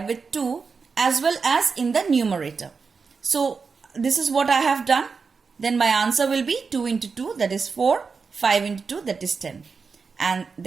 with 2 as well as in the numerator. So this is what I have done. Then my answer will be 2 into 2, that is 4. 5 into 2, that is 10. And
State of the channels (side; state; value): left; quieter; 5.1 dB